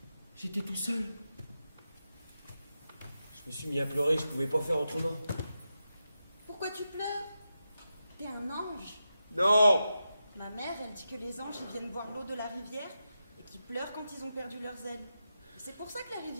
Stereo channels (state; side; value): inverted; both; correlation -0.89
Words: J'étais tout seul. Je me suis mis à pleurer, je pouvais pas faire autrement. Pourquoi tu pleures? T'es un ange. Non! Ma mère, elle dit que les anges, ils viennent boire l'eau de la rivière et qu'ils pleurent quand ils ont perdu leurs ailes. C'est pour ça que la